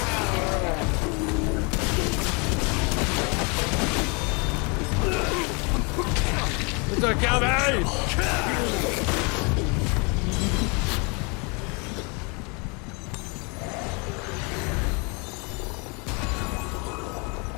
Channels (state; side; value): quieter; right; 31.9 dB